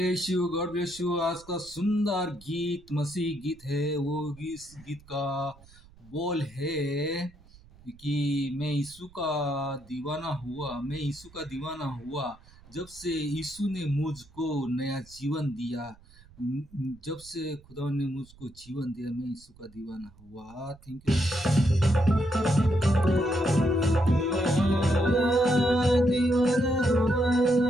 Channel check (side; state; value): right; noise; rumble, 25 dB below the sound